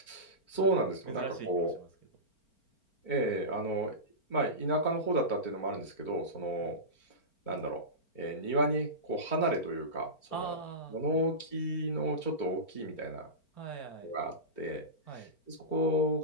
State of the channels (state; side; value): late; right; 4.4 ms